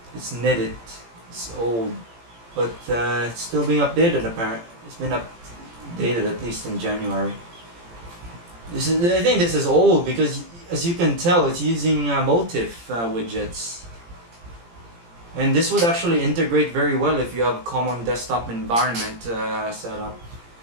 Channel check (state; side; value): late; left; 17 ms